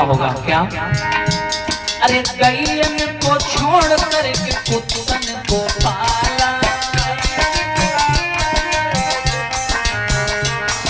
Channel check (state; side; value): identical; both; correlation 1.00